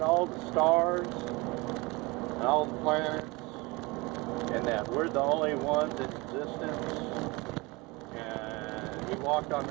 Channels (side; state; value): left; quieter; 24.6 dB